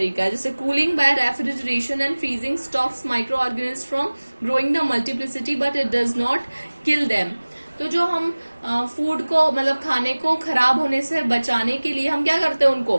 है। जैसे cooling bye refrigeration and freezing stops micro organism from growing the multiplicity but it does not kill them. तो जो हम फूड को, मतलब खाने को खराब होने से बचाने के लिए हम क्या करते हैं, उनको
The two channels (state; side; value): inverted; both; correlation -1.00